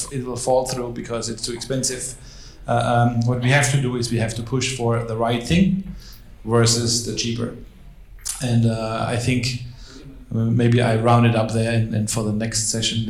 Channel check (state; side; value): identical; both; correlation 1.00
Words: will fall through because it's too expensive. What we have to do is we have to push for the right thing versus the cheaper. And I think maybe I round it up there, and for the next session